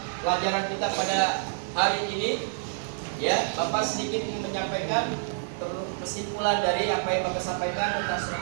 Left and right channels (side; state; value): left; silent; digital silence